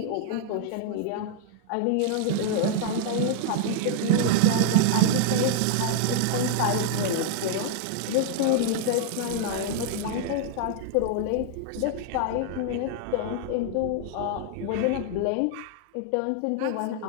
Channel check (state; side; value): different; both; correlation -0.01